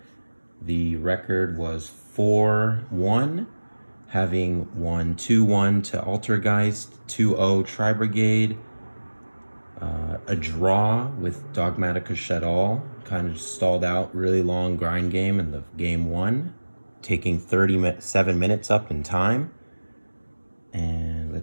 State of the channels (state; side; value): inverted; both; correlation -1.00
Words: The record was 4-1, having won 2-1 to Altergeist, 2-0 Tri-Brigade, a draw with Dogmatica Shadal, kind of stalled out, really long grind game in the game one, taking 37 minutes up in time. And